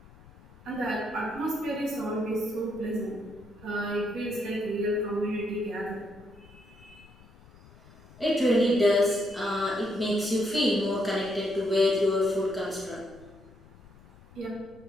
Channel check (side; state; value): left; noise; rumble, 23 dB below the sound